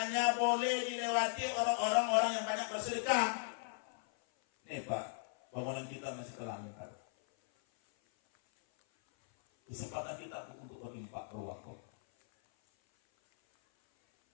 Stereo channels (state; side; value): silent; right; 53 dB below the other